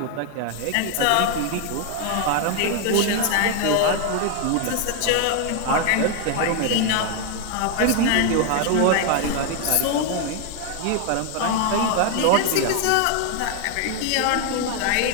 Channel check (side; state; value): both; different; correlation 0.01